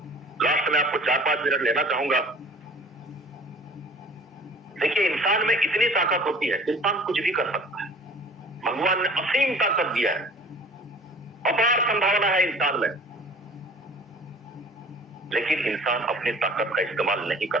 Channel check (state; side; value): normal; both; correlation 0.47